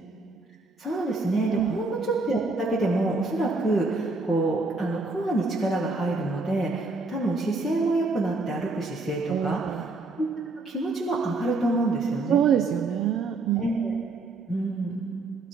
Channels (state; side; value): quieter; left; 3.4 dB